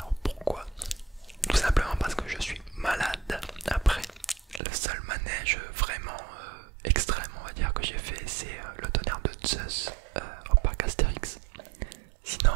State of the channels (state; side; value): drops out; left; at 4.6 s